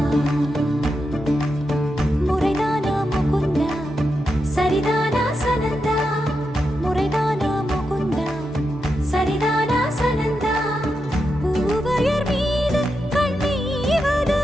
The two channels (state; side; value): normal; both; correlation 0.87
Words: முறைதானா முகுந்தா சரிதானா சனந்தா முறைதானா முகுந்தா சரிதானா சனந்தா பூவையர் மீது கண்ணீவது